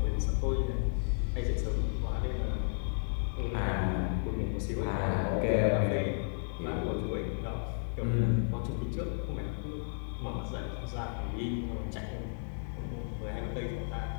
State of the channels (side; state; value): right; silent; 56 dB below the other